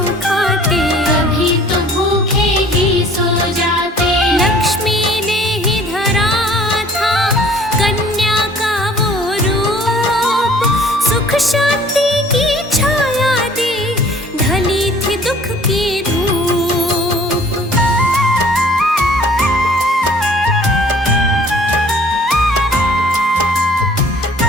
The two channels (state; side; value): normal; both; correlation 0.53